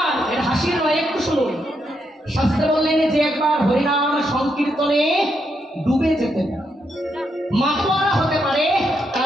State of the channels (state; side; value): normal; both; correlation 0.80